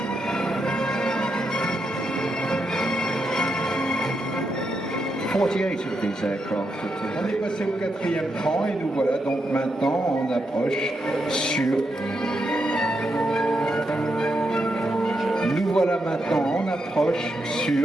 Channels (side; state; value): both; normal; correlation 0.83